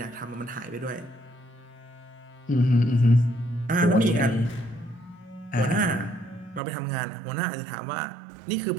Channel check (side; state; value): left; drops out; at 6.6 s